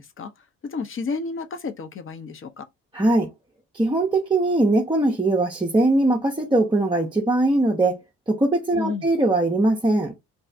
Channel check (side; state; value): both; normal; correlation 0.71